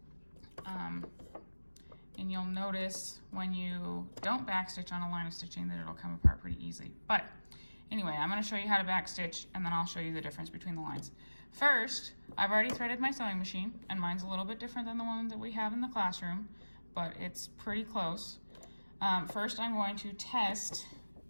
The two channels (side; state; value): both; inverted; correlation -1.00